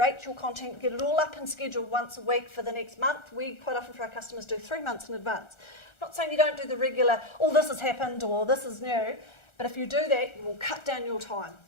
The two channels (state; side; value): late; right; 1.4 ms